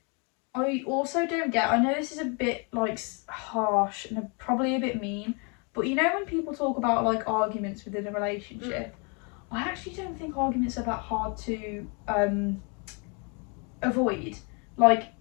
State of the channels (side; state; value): right; quieter; 34.9 dB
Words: I also don't get, I know this is a bit like harsh and probably a bit mean, but you know when people talk about like arguments within a relationship, I actually don't think arguments are that hard to avoid. Like,